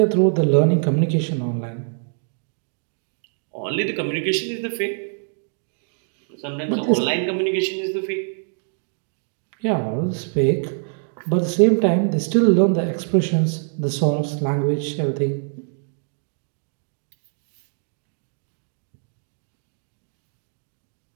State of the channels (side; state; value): left; silent; 61 dB below the other